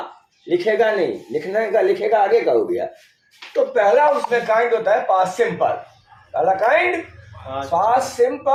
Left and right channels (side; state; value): both; identical; correlation 1.00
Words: लिखेगा नहीं, लिखने का लिखेगा आगे का हो गया। तो पहला उसमें काइंड होता है पास्ट सिंपल। पहला काइंड पास्ट